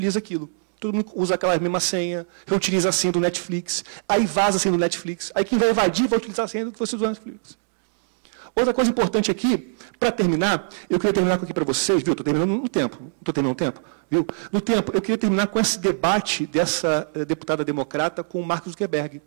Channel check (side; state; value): left; silent; digital silence